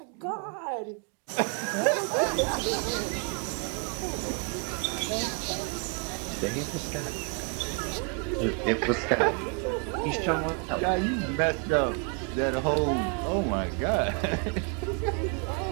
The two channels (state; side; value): quieter; left; 37.0 dB